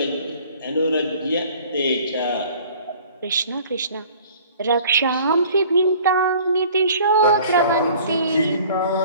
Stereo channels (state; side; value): inverted; both; correlation -0.50